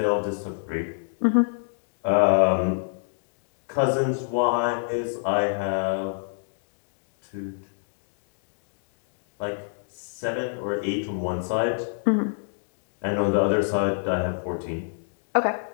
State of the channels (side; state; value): right; silent; digital silence